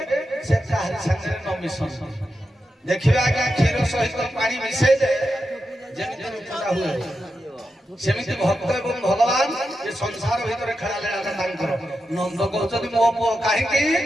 ସେ କାହାରି ସାଙ୍ଗରେ ନ ମିଶନ୍ତି। ଦେଖିବେ ଆଜ୍ଞା କ୍ଷୀର ସହିତ ପାଣି ମିଶେଇଲେ ଯେମିତି ରୂପଟା ହୁଏ, ସେମିତି ଭକ୍ତ ଏବଂ ଭଗବାନ ଏ ସଂସାର ଭିତରେ ଖେଳା ଲେଳା ତାଙ୍କର। ନନ୍ଦ କହୁଛନ୍ତି ମୋ ପୁଅ କାହିଁକି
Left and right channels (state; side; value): normal; both; correlation 0.89